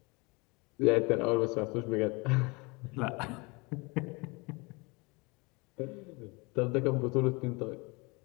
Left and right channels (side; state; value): right; quieter; 27.5 dB